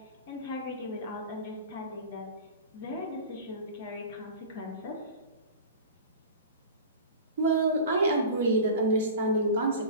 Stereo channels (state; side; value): inverted; both; correlation -0.34